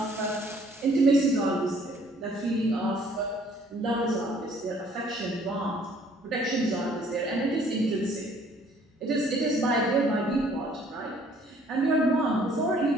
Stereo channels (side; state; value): both; normal; correlation 0.59